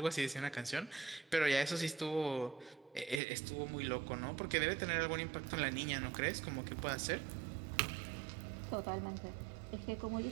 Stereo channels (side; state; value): left; drops out; at 3.2 s